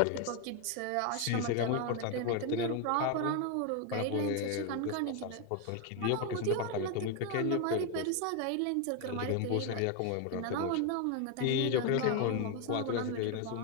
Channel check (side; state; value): both; different; correlation 0.01